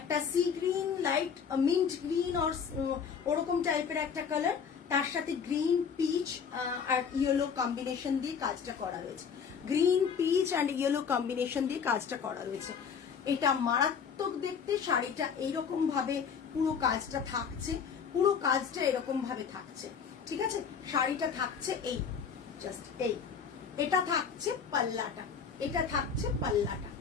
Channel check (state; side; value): quieter; right; 6.6 dB